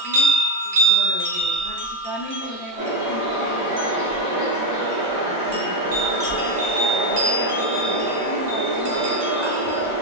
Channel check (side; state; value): both; normal; correlation 0.08